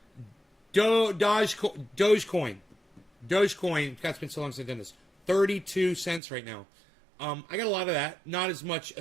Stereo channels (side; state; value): left; drops out; at 6.2 s